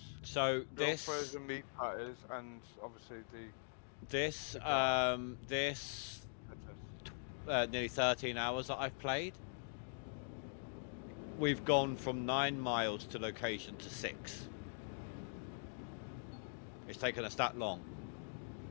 So grill this frozen meat patties, and obviously the this nearly 13 hours that I've played. We've gone from 9 miles to location to 6. It's taken us that long.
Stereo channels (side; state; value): right; silent; digital silence